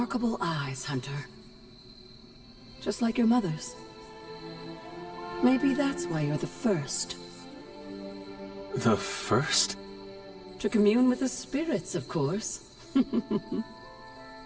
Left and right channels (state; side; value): identical; both; correlation 1.00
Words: eyes, Hunter. Just like your mother's. Maybe that's why you're the first. The first? To commune with the spirits, of course.